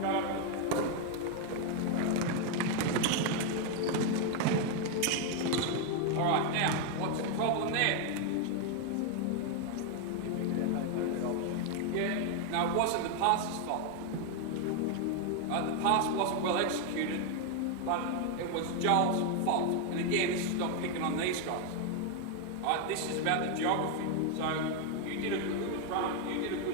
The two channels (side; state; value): both; different; correlation 0.01